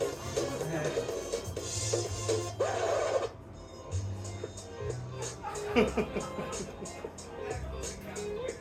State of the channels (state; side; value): identical; both; correlation 1.00